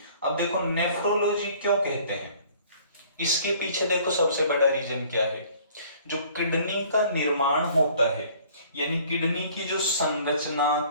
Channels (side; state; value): both; inverted; correlation -0.54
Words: अब देखो, नेफ्रोलॉजी क्यों कहते हैं? इसके पीछे देखो, सबसे बड़ा रीजन क्या है? जो किडनी का निर्माण होता है, यानी किडनी की जो